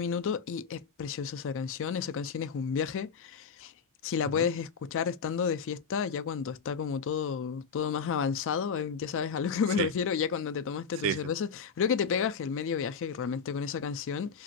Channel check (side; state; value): right; quieter; 5.6 dB